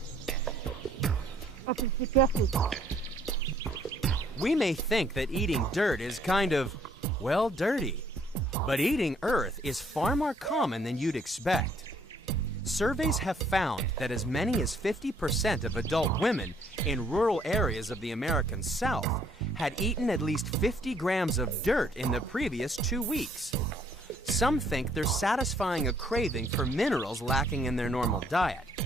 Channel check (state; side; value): normal; both; correlation 0.64